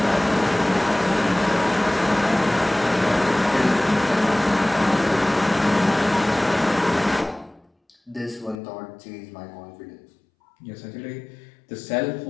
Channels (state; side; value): drops out; right; at 8.6 s